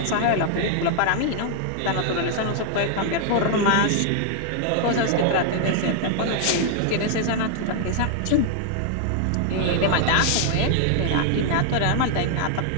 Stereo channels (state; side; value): different; both; correlation 0.00